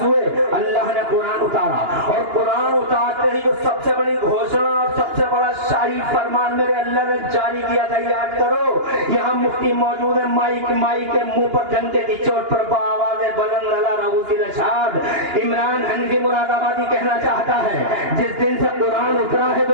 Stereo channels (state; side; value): late; left; 2.9 ms